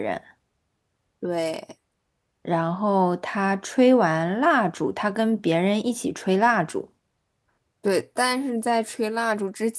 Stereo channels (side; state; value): both; identical; correlation 1.00